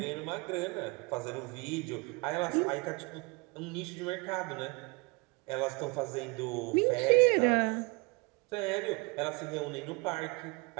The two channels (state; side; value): quieter; left; 28.2 dB